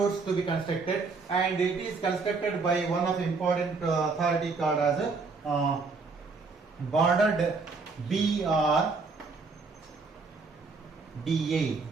to be constructed, and it is constructed by one of the important authority called as border BRDA.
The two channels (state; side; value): quieter; left; 4.3 dB